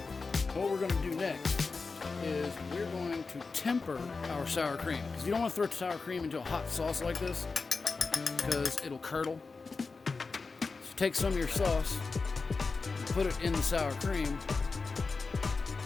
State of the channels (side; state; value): right; quieter; 4.3 dB